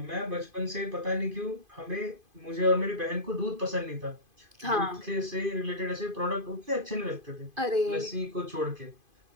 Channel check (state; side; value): late; left; 2.5 ms